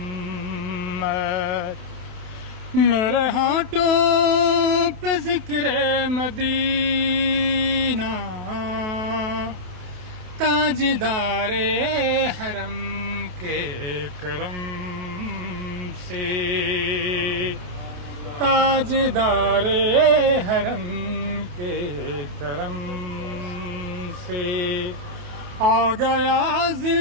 میرے ہونٹوں پہ ذکر مدینہ، تاجدار حرم کے کرم سے، تاجدار حرم کے کرم سے آ گیا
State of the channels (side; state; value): left; late; 28 ms